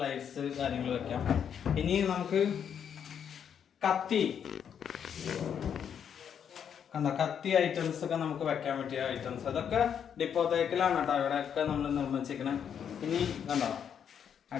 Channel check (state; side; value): quieter; right; 8.1 dB